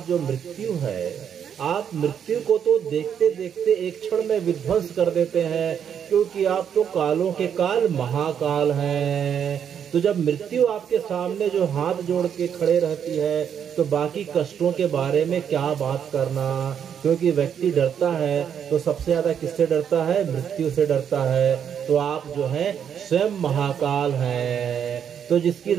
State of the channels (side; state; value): left; quieter; 8.3 dB